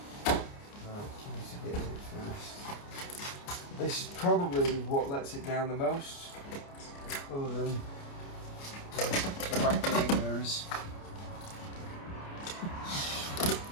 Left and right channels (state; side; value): late; right; 29 ms